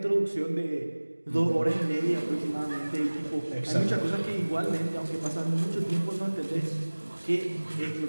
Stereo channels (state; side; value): inverted; both; correlation -1.00